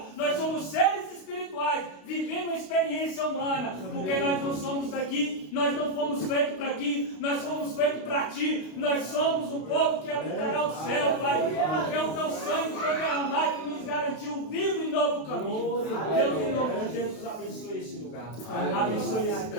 Nós somos seres espirituais vivendo uma experiência humana. Porque nós não somos daqui, nós não fomos feitos para aqui, nós fomos feitos para ti. Nós somos um povo que habitará o céu, Pai. Porque o teu sangue foi derramado e nos garantiu um vivo e novo caminho. Deus, em nome de Jesus, abençoe esse lugar. Abençoe esse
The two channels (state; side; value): late; right; 32 ms